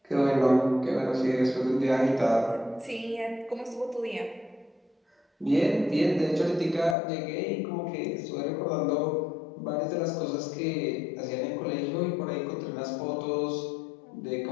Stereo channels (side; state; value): right; drops out; at 7.0 s